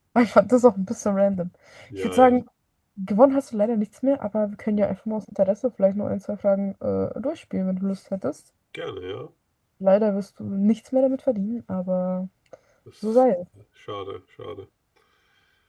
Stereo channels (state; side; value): identical; both; correlation 1.00